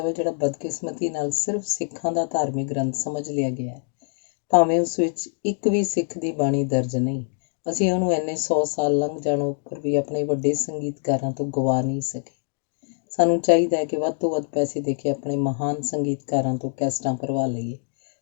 ਹੈ, ਜਿਹੜਾ ਬਦਕਿਸਮਤੀ ਨਾਲ ਸਿਰਫ ਸਿੱਖਾਂ ਦਾ ਧਾਰਮਿਕ ਗ੍ਰੰਥ ਸਮਝ ਲਿਆ ਗਿਆ ਹੈ, ਭਾਵੇਂ ਉਸ ਵਿੱਚ ਇੱਕ ਵੀ ਸਿੱਖ ਦੀ ਬਾਣੀ ਦਰਜ ਨਹੀਂ। ਅਸੀਂ ਉਹਨੂੰ ਇੰਨੇ 100 ਸਾਲ ਲੰਘ ਜਾਣ ਉੱਪਰ ਵੀ ਆਪਣੇ ਵੱਡੇ ਸੰਗੀਤਕਾਰਾਂ ਤੋਂ ਗਵਾ ਨਹੀਂ ਸਕੇ। ਸਾਨੂੰ ਚਾਹੀਦਾ ਹੈ ਕਿ ਵੱਧ ਤੋਂ ਵੱਧ ਪੈਸੇ ਦੇ ਕੇ ਆਪਣੇ ਮਹਾਨ ਸੰਗੀਤਕਾਰਾਂ ਤੋਂ ਕੈਸਟਾਂ ਭਰਵਾ ਲਈਏ,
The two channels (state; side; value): silent; right; digital silence